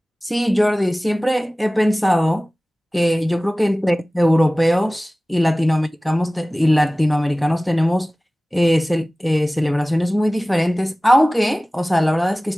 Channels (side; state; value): both; normal; correlation 0.98